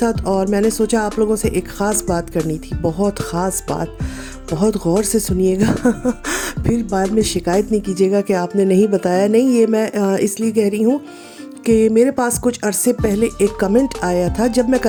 और मैंने सोचा आप लोगों से एक ख़ास बात करनी थी, बहुत ख़ास बात, बहुत गौर से सुनिएगा फिर बाद में शिकायत नहीं कीजिएगा कि आपने नहीं बताया। नहीं, ये मैं इसलिए कह रही हूँ कि मेरे पास कुछ अरसे पहले एक कमेंट आया था जब मैं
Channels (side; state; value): both; identical; correlation 1.00